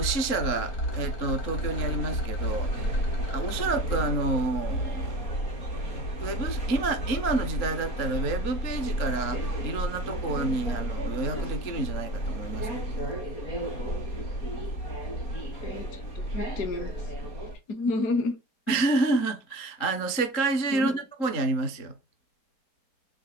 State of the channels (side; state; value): right; late; 3.8 ms